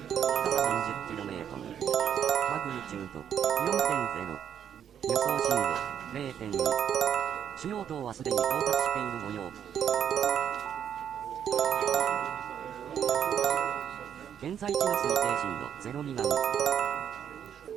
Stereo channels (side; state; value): left; quieter; 9.0 dB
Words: 深さ 30km、マグニチュード 4.0、予想震度 0.2、主要島はすでに到達している模様。現在地の推定震度0未満。